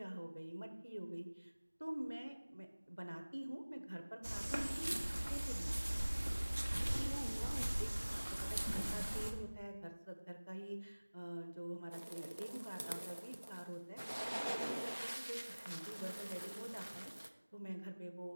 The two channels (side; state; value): both; inverted; correlation -1.00